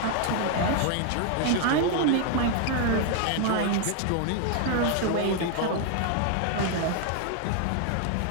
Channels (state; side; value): different; both; correlation 0.00